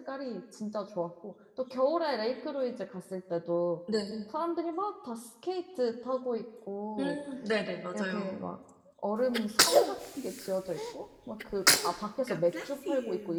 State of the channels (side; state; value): both; identical; correlation 1.00